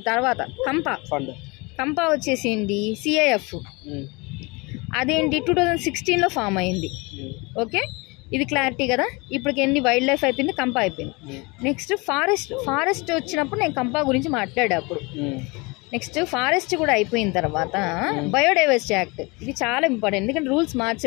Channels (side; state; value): right; quieter; 26.9 dB